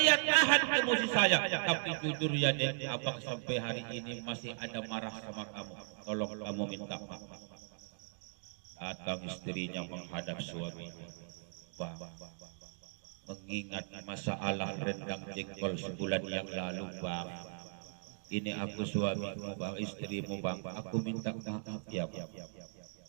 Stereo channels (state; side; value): silent; left; digital silence